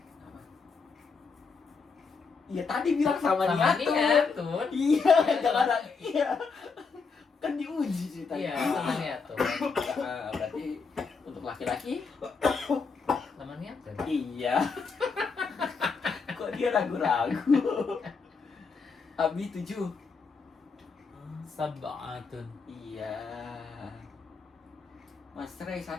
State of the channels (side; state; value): right; quieter; 4.9 dB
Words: Iya tadi bilang sama Sama niatun. niatun. Iya, jangan ada. Iya. Kan diuji ceritanya. Iya, sama niatun. Berarti untuk laki-laki Sama niatun. iya. Kok dia ragu-ragu? Abi 7. Sab'atun. Iya. Mas Rey